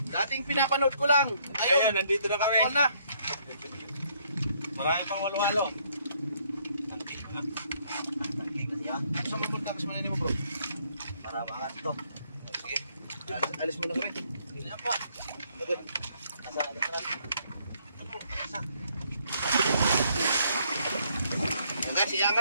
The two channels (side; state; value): both; inverted; correlation -0.68